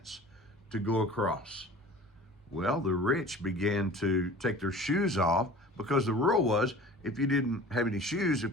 to go across. Well, the rich began to take their shoes off because the rule was if you didn't have any shoes,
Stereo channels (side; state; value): both; normal; correlation 0.42